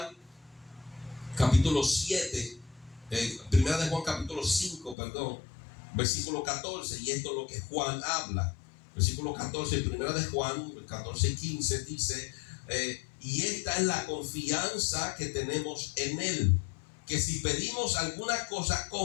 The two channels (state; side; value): drops out; right; at 5.0 s